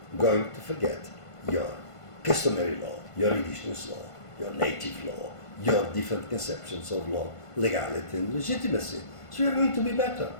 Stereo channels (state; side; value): late; right; 1.5 ms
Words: going to forget your customary law, your indigenous law, your native law, your different conceptions of law, legality and legitimacy. So you are going to be better.